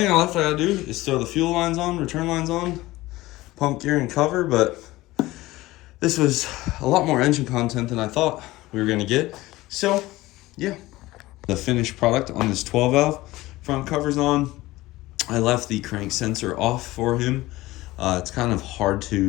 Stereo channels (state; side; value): quieter; right; 18.5 dB